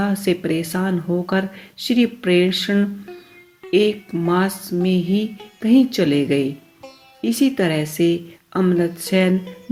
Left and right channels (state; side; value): identical; both; correlation 1.00